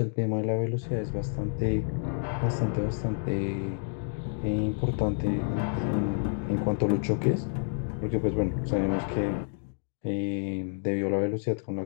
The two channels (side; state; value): right; silent; digital silence